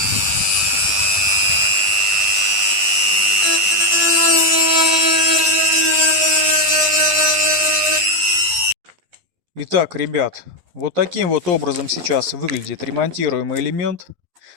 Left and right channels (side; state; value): left; late; 11 ms